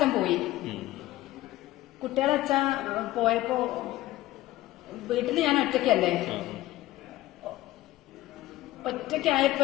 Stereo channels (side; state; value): right; quieter; 16.3 dB